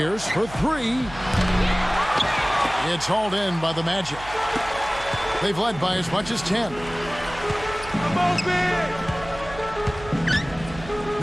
for 3. It's hauled in by the Magic. They've led by as much as 10.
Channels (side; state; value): right; noise; hum, 15 dB below the sound